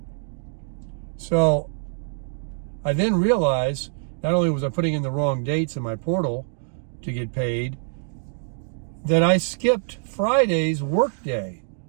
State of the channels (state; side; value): silent; left; digital silence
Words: So I then realized not only was I putting in the wrong dates in my portal to get paid, that I skipped Friday's work day.